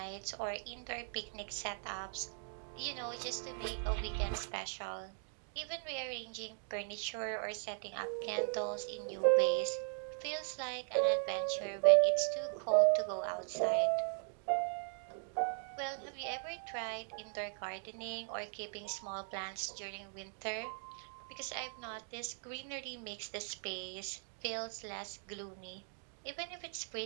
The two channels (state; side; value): silent; left; 52 dB below the other